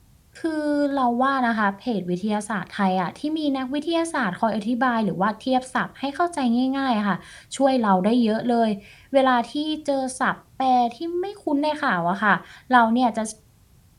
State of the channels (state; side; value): identical; both; correlation 1.00